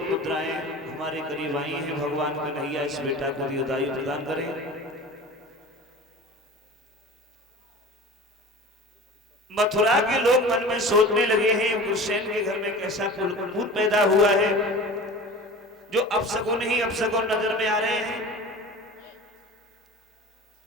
मुद्राएं हमारे करीब आई हैं। भगवान कन्हैया इस बेटा को दीर्घायु प्रदान करें। मथुरा के लोग मन में सोचने लगे हैं उग्रसेन के घर में कैसा कपूत पैदा हुआ है। जो अपशकुन ही अपशकुन नजर में आ रहे हैं।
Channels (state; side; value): normal; both; correlation 0.37